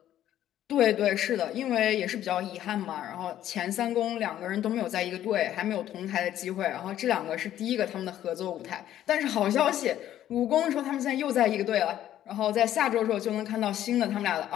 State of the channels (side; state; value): right; quieter; 12.0 dB